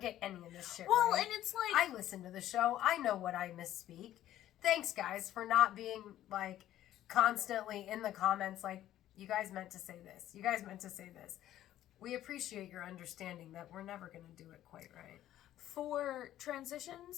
any of this shit Well, right. and it's like... I listen to the show. I know what I misspeak. Thanks, guys, for not being, like, constantly in the comments like, you guys meant to say this. You guys meant to say this. We appreciate your understanding that we're never going to do it quite right. For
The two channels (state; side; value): quieter; right; 12.8 dB